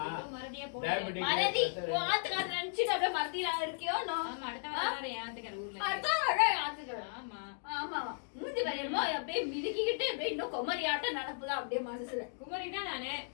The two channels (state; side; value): silent; right; digital silence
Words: மறதியா டயபெட்டிக் மறதி ஆத்துக்கார நினைச்சிட்டு அப்படியே மறதியா இருக்கியோ? ஆமா, அடுத்த வாரம் யாத்துக்கார ஊர்ல. அடுத்த வாரம் ஆத்துக்கார. ஆமா ஆமா, மூஞ்சி வரையமா அப்படியே மிதிக்கிட்டு அப்படியே இன்னும் கொமரியாட்ட நடப்புதான் அப்படியே மனசுல. குமரினா நானு